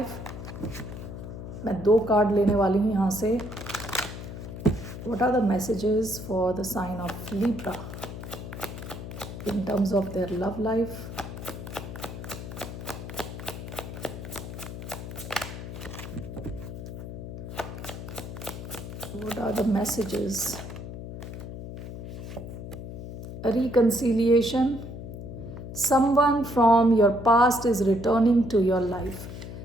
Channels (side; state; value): left; noise; hum, 9 dB below the sound